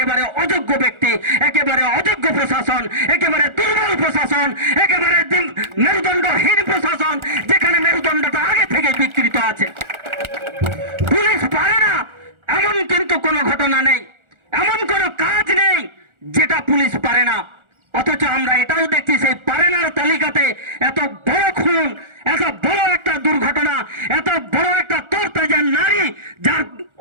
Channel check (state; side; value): late; left; 1.4 ms